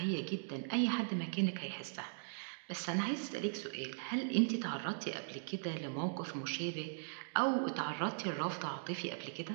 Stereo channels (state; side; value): silent; left; digital silence